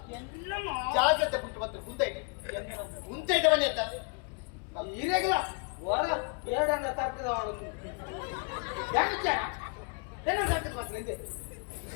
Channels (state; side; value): quieter; right; 34.8 dB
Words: ఎన్నమ్మ జాగ్రత్త పుట్టుబత్తు ముందైతే ముందైతే బని ఎత్త ఈరేగల వర ఏడంగా తక్కువ వాడు యాకిచ్చారా ఏడ తక్కువ బస్సు ಇದೆ